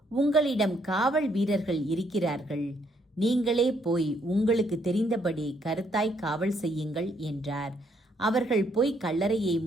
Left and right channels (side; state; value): both; normal; correlation 0.71